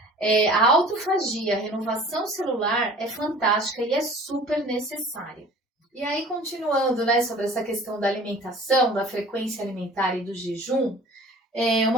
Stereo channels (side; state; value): both; normal; correlation 0.46